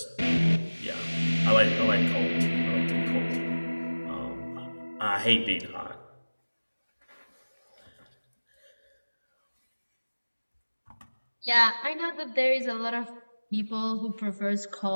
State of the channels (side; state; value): both; inverted; correlation -1.00